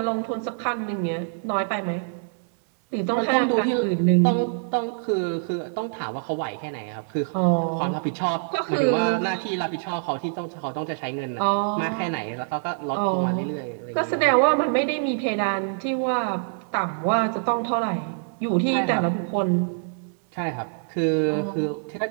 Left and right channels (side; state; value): left; silent; digital silence